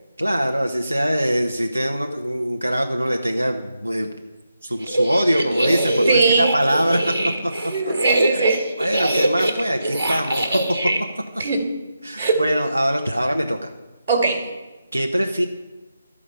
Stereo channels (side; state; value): both; inverted; correlation -0.86